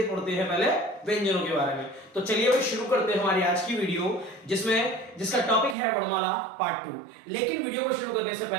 पढ़ते हैं पहले व्यंजनों के बारे में। तो चलिए भाई शुरू करते हैं हमारी आज की वीडियो, जिसका टॉपिक है वर्णमाला पार्ट 2। लेकिन वीडियो को शुरू करने से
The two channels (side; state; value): left; drops out; at 5.8 s